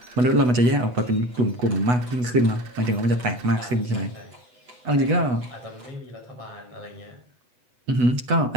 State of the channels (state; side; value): late; left; 8.1 ms